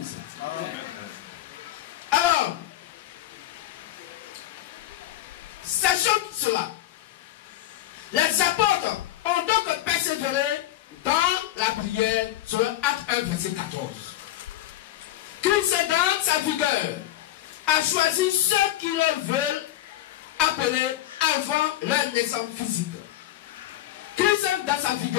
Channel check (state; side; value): quieter; right; 14.0 dB